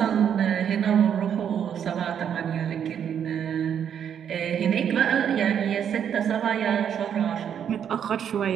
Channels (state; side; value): quieter; left; 8.6 dB